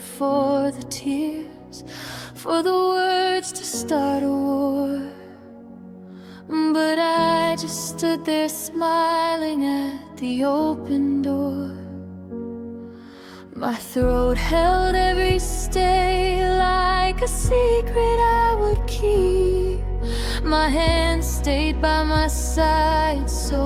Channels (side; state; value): both; identical; correlation 1.00